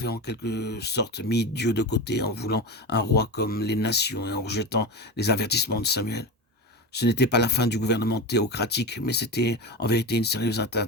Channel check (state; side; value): normal; both; correlation 0.23